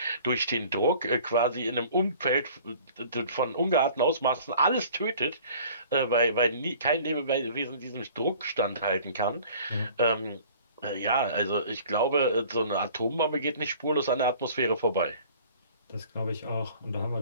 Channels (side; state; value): both; inverted; correlation -0.49